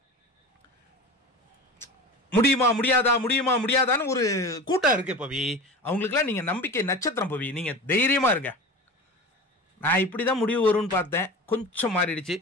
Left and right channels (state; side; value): normal; both; correlation 0.32